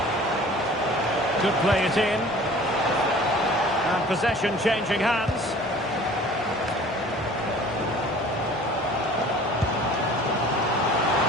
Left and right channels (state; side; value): normal; both; correlation 0.47